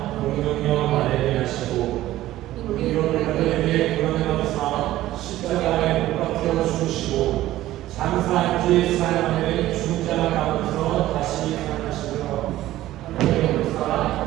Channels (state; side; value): quieter; left; 15.0 dB